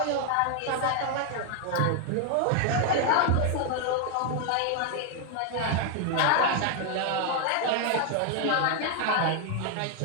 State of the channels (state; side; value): different; both; correlation 0.00